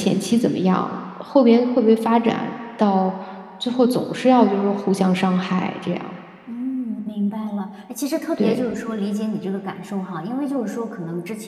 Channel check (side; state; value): both; identical; correlation 1.00